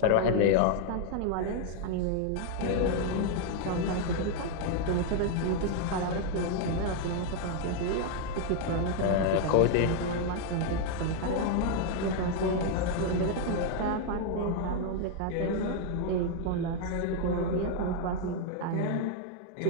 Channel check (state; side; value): different; both; correlation 0.00